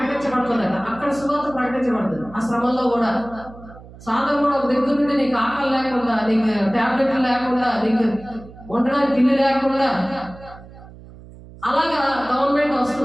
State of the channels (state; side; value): noise; right; hum, 19 dB below the sound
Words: అక్కడ సువార్త ప్రకటించబడుతుంది. ఆ శ్రమంలో కూడా సాధన కూడా ఒక దగ్గర నుండి నీకు ఆకలి లేకుండా, నీకు టాబ్లెట్లు లేకుండా, నీకు ఉండడానికి ఇల్లు లేకుండా అలాగా గవర్నమెంట్